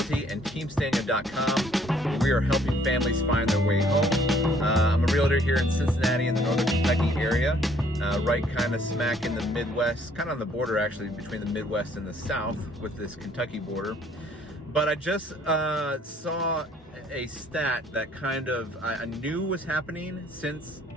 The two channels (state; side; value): normal; both; correlation 0.62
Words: and TeamStanyo.com. We are helping families find their way home. I'm a realtor here in Cincinnati in the northern Kentucky area, right kind of smack in the Midwest, kind of on the border actually between the Midwest and the South with this Kentucky border. But I just saw a stat that kind of I knew was happening since